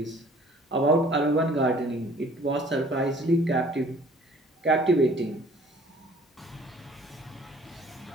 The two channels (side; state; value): both; normal; correlation 0.54